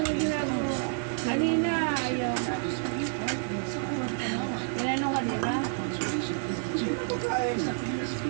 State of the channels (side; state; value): left; silent; digital silence